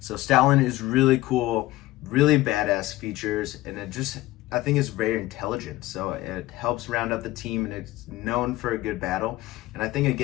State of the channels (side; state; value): right; quieter; 17.6 dB